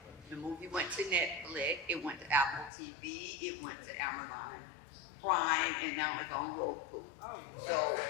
The movie went to Netflix, it went to Apple TV, it went to Amazon Prime, and now it's on Roku. So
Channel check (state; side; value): drops out; right; at 2.7 s